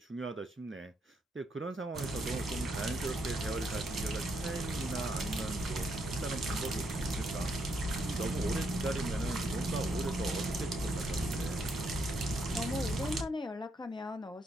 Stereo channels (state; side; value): normal; both; correlation 0.76